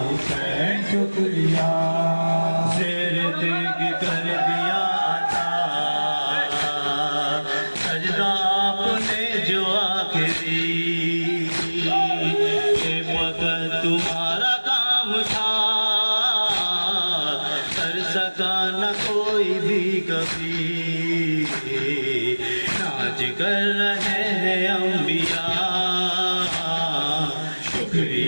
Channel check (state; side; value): inverted; both; correlation -1.00